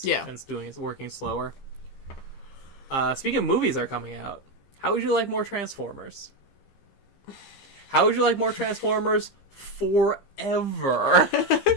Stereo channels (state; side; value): late; right; 15 ms